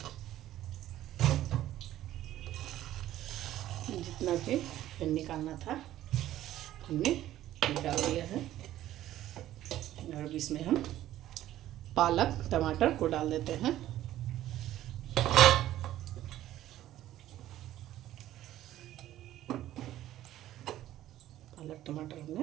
जितना भी फैन निकालना था हमने निकाल दिया है। और इसमें हम पालक टमाटर को डाल देते हैं। पालक टमाटर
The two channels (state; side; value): quieter; left; 13.5 dB